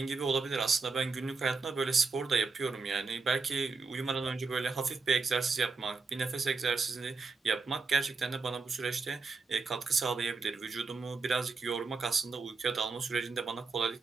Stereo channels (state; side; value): quieter; left; 4.3 dB